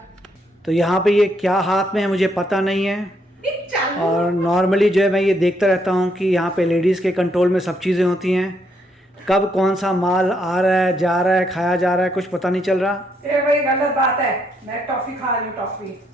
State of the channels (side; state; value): both; normal; correlation 0.74